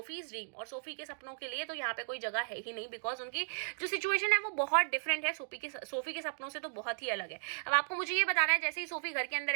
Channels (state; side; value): silent; left; digital silence